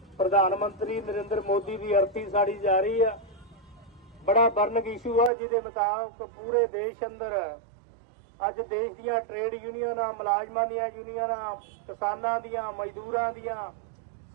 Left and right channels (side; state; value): left; drops out; at 5.3 s